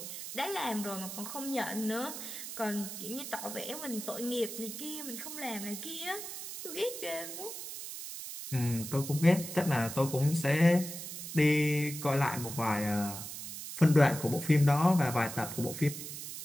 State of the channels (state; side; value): noise; right; hiss, 8 dB below the sound